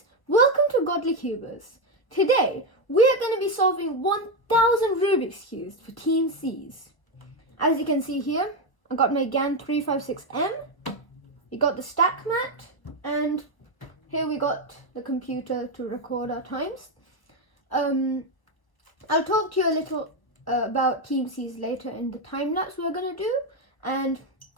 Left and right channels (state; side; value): late; right; 1.3 ms